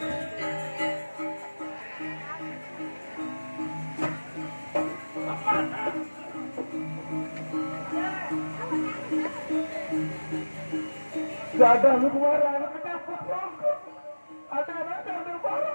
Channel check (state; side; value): inverted; both; correlation -1.00